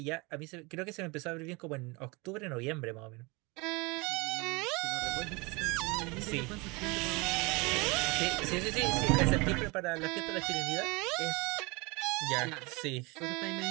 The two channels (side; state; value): left; quieter; 26.6 dB